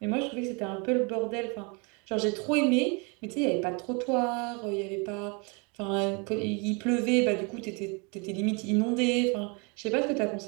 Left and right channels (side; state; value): left; quieter; 31.7 dB